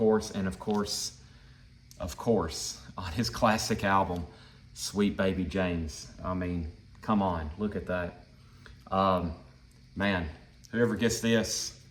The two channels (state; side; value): identical; both; correlation 1.00